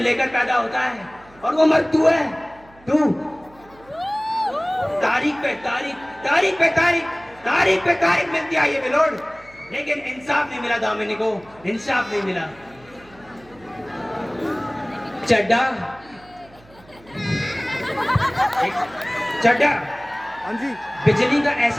पैदा होता है, और वो मर्द तू है, तू। तारीख पे तारीख, तारीख पे तारीख, तारीख पे तारीख मिलती है ये बिलोड, लेकिन इंसाफ नहीं मिला दामिनी को, इंसाफ नहीं मिला। चड्डा चड्डा, हाँ जी, बिजली का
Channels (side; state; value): right; noise; hum, 26 dB below the sound